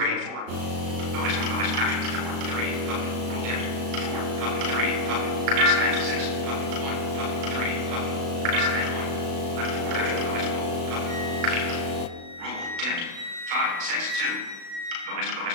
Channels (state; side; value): late; left; 36 ms